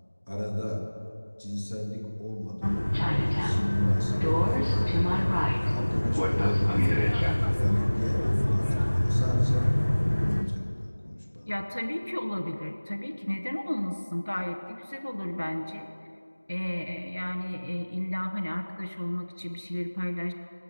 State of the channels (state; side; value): inverted; both; correlation -1.00